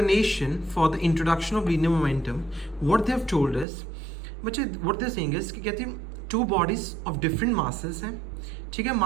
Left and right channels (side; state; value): left; drops out; at 3.7 s